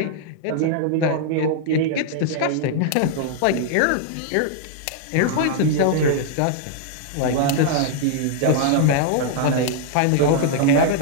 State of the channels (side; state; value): both; different; correlation -0.01